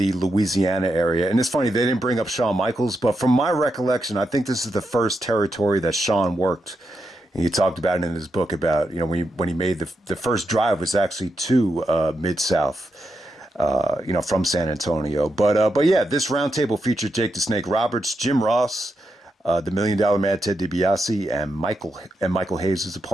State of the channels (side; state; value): both; normal; correlation 0.85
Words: Louisiana area. And it's funny, they didn't bring up Shawn Michaels, but from my recollection, I think this is the first territory that Shawn worked. And he talked about it in his book about, when he made the first drive was actually to Mid-South. From San Antonio. But yeah, this roundtable featured Jake the Snake Roberts, Jim Ross, the $1 Million Man, Ted DiBiase, and Michael Hayes is a